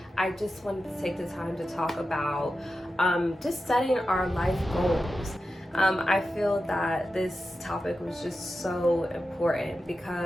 I just wanted to take the time to talk about just setting our life goals. I feel that this topic was just so important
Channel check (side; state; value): both; normal; correlation 0.91